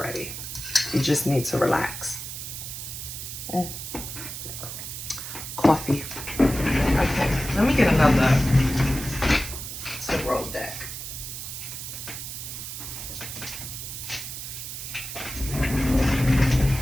You just need to relax. Coffee. Okay, let me get another Tarot deck.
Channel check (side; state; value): right; noise; hiss, 8 dB below the sound